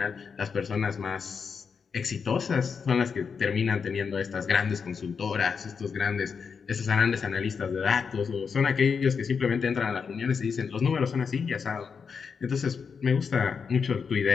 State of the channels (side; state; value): right; quieter; 5.9 dB